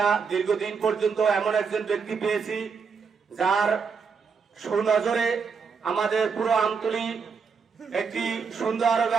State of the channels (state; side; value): quieter; left; 5.6 dB